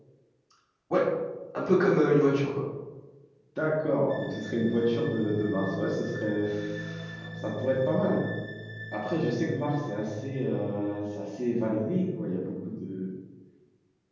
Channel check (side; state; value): both; identical; correlation 1.00